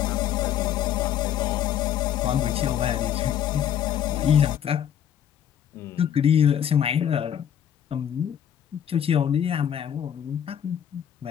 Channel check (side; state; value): right; quieter; 9.7 dB